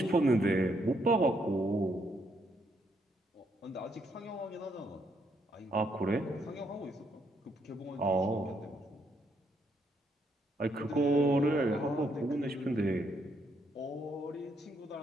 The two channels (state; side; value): normal; both; correlation 0.74